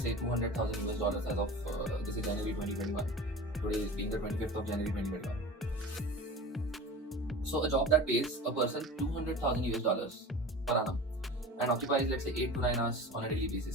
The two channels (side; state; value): both; normal; correlation 0.35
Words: say, 200,000 US dollars as of this is January 2021. Today is being the 25th of January 2021. So a job that pays a person 200,000 US dollars per annum and occupies, let's say, 8 to 9 hours on a daily